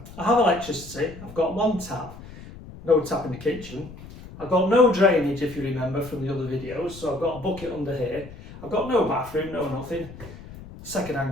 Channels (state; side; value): noise; left; rumble, 16 dB below the sound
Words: I have electricity, I've got one tap, no tap in the kitchen, I've got no drainage if you remember from the other videos, so I've got a bucket under here, I've got no bathroom, no nothing,